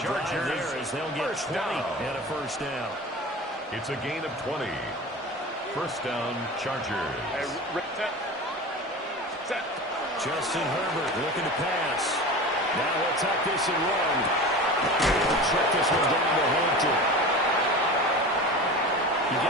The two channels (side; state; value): both; normal; correlation 0.33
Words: drive there as they'll get 20 and a first down. It's a gain of 20. First down, Chargers. Justin Herbert looking to pass. Now he'll tuck this and run. He'll check this one down to Hampton. You